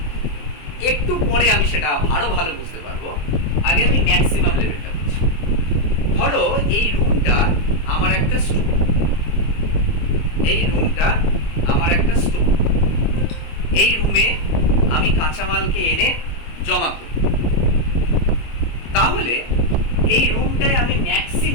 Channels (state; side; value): late; right; 25 ms